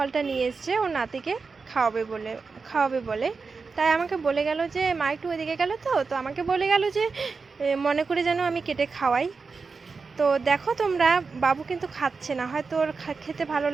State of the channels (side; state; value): left; quieter; 4.7 dB